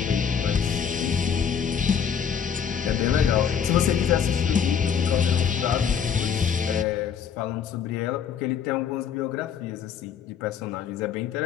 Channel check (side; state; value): right; quieter; 7.5 dB